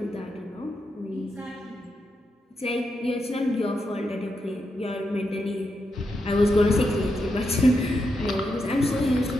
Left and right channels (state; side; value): normal; both; correlation 0.84